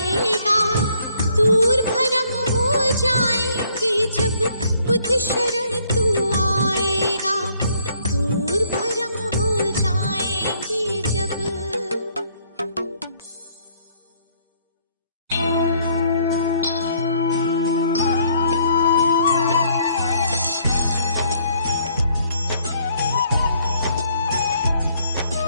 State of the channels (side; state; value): both; inverted; correlation -0.66